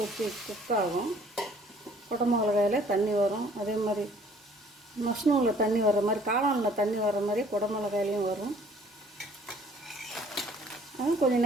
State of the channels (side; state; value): both; normal; correlation 0.56